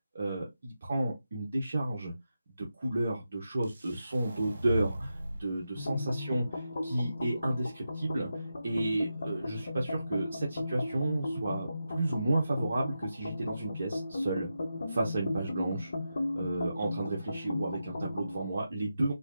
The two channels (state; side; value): inverted; both; correlation -0.88